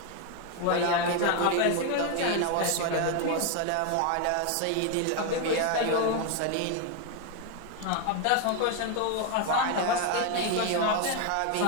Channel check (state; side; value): different; both; correlation 0.01